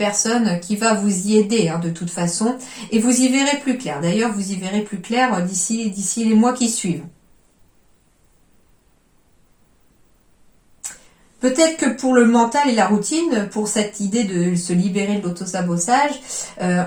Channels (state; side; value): identical; both; correlation 1.00